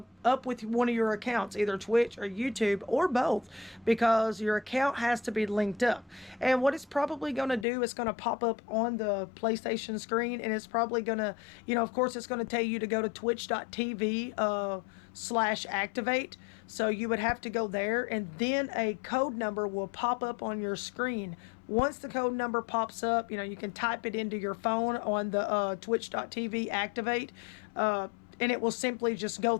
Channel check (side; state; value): right; drops out; at 7.7 s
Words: with one of your accounts, either Twitch or YouTube or both, because your account has to be linked up. And what it's probably going to do is going to pop up on the PlayStation screen, and it's probably going to, of course, it's going to tell you to go to twitch.tv /activate. So you would have to go there, and then a code number will pop up on your screen. Once the code number pops up, you can type it into your phone on the twitch.tv activate, and it will simply just go